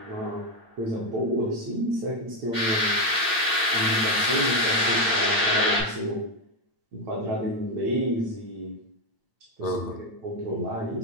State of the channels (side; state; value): left; late; 8.9 ms